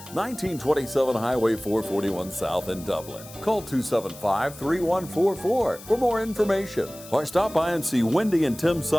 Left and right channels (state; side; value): noise; left; hiss, 17 dB below the sound